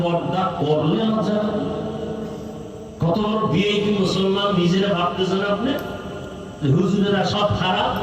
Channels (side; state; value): both; identical; correlation 1.00